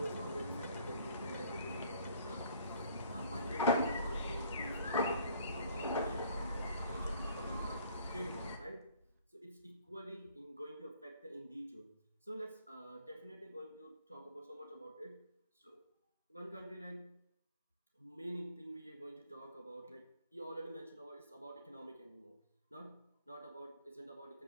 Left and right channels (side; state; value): both; inverted; correlation -0.58